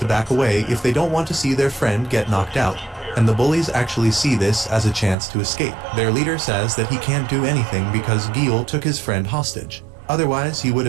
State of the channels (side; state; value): left; drops out; at 5.2 s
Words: back away if they don't want to see their friend get knocked out, and the bullies actually see this as a chance to escape. Their leader says that he can't do anything because Gil took his friend hostage. Otherwise, he would